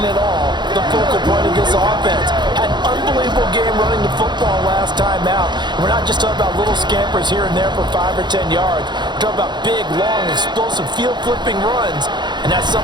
at all, the focal point of this offense. Had an unbelievable game running the football last time out. And we're not just talking about little scampers here and there for 5 or 10 yards. We're talking about big, long, explosive, field-flipping runs. And that's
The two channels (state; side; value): late; left; 0.21 ms